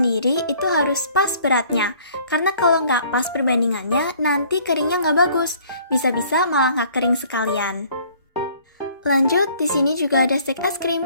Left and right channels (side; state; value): both; inverted; correlation -0.57